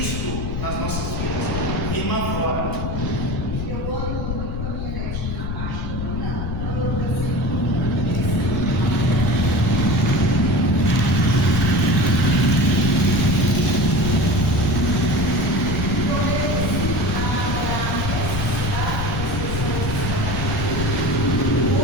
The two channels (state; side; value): noise; left; rumble, 4 dB below the sound